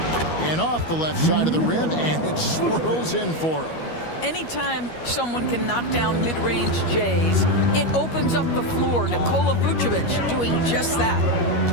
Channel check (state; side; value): late; right; 13 ms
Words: And off the left side of the rim, and it swirls in for him. Anytime someone can knock down mid-range Jays, it opens up the floor. Nikola Vucevic doing just that.